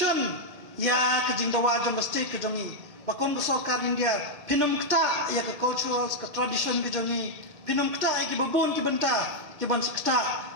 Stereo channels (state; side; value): late; left; 1.7 ms